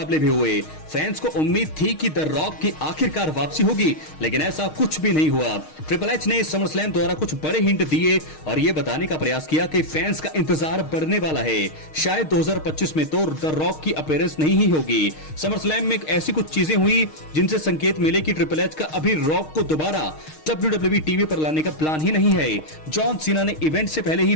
भी हुए। फैंस को उम्मीद थी कि द रॉक की आखिरकार वापसी होगी, लेकिन ऐसा कुछ भी नहीं हुआ। ट्रिपल एच ने समरस्लैम द्वारा कुछ बड़े हिंट दिए और यह बताने का प्रयास किया कि फैंस का इंतजार बढ़ने वाला है। शायद 2025 में तो द रॉक की अपीयरेंस नहीं ही होगी। समरस्लैम में ऐसी कुछ चीजें हुई जिनसे संकेत मिले कि ट्रिपल एच का अभी रॉक को दोबारा WWE टीवी पर लाने का प्लान ही नहीं है। जॉन सीना ने इवेंट से पहले ही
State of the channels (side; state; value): right; late; 6.5 ms